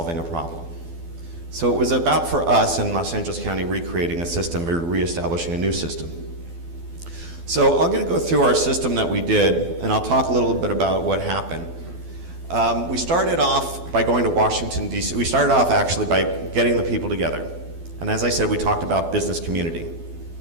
a problem. So it was about, for us in Los Angeles County, recreating a system or reestablishing a new system. So I'm going to go through our system that we did, and I'll talk a little bit about what happened. We started off by going to Washington, D.C. We started off actually by getting the people together. And as I said, we talked about business community.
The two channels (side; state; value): left; late; 12 ms